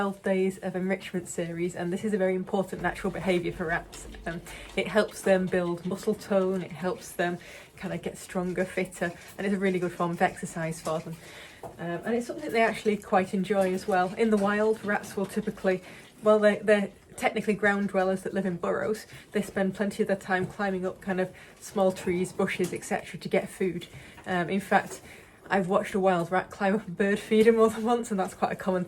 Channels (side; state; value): both; identical; correlation 1.00